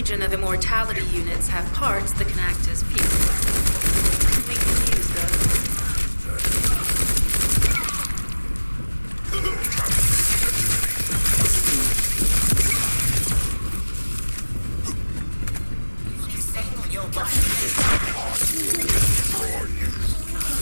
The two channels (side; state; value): both; inverted; correlation -1.00